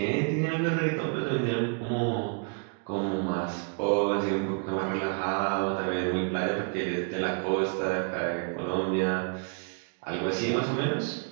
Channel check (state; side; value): quieter; left; 36.8 dB